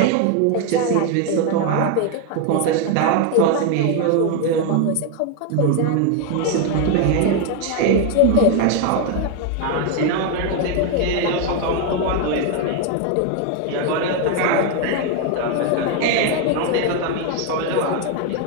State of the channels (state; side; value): different; both; correlation 0.01